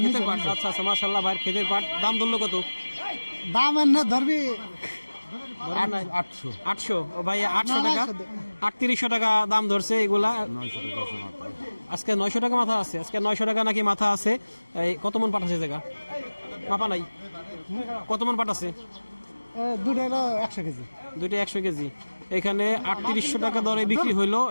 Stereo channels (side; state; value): both; inverted; correlation -1.00